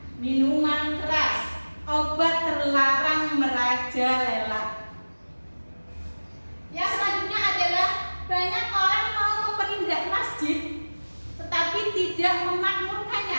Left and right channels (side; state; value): both; inverted; correlation -1.00